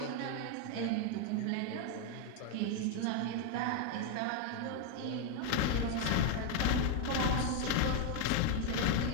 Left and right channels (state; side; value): different; both; correlation 0.01